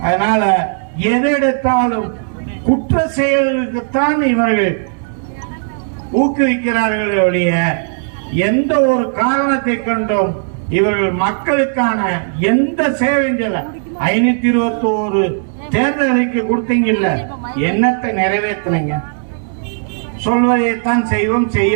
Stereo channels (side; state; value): left; silent; digital silence